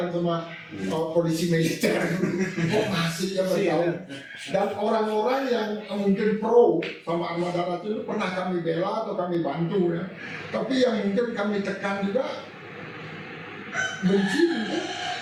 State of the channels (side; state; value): both; identical; correlation 1.00